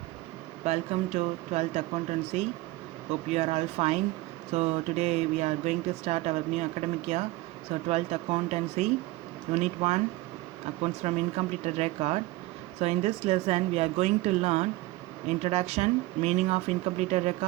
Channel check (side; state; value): left; quieter; 19.1 dB